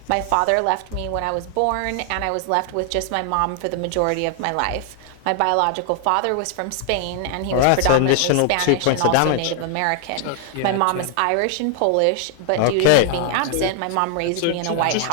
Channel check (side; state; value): both; different; correlation 0.00